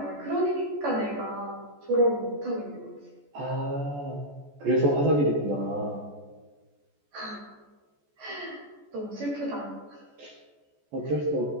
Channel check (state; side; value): late; left; 14 ms